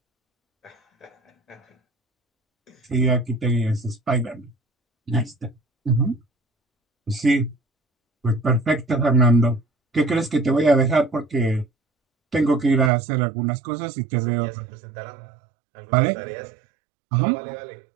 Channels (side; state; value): left; drops out; at 12.9 s